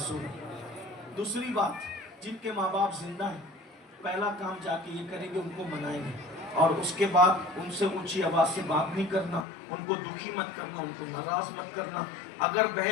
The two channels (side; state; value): right; drops out; at 9.5 s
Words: دوسری بات، جن کے ماں باپ زندہ ہیں پہلا کام جا کے یہ کریں گے، ان کو منائیں گے. اور اس کے بعد ان سے اونچی آواز سے بات نہیں کرنا، ان کو دکھی مت کرنا، ان کو ناراض مت کرنا. اگر